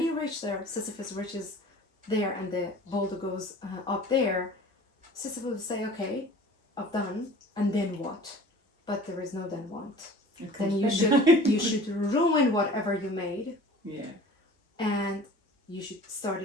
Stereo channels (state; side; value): normal; both; correlation 0.44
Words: reach there, Sisyphus reaches there and the boulder goes up there, Sisyphus will say, okay, I've done, and then what? But there is no then what. Then you should ruin whatever you made. And you should start